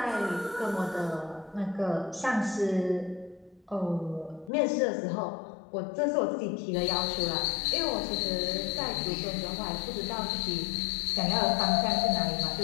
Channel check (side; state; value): right; drops out; at 4.5 s